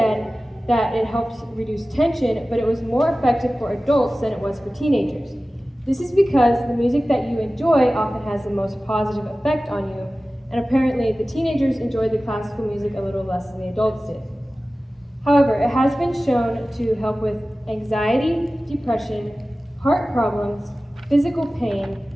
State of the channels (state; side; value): normal; both; correlation 0.96